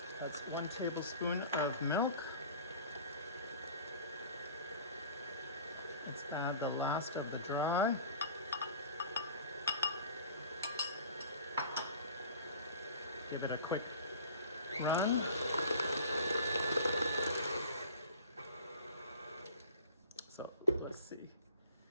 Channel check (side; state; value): both; inverted; correlation -0.43